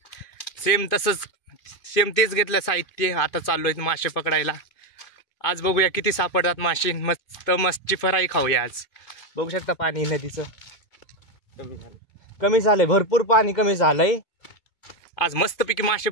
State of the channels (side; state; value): right; late; 2.5 ms